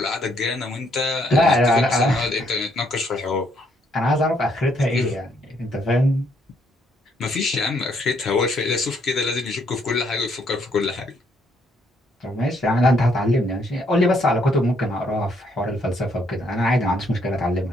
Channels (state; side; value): normal; both; correlation 0.70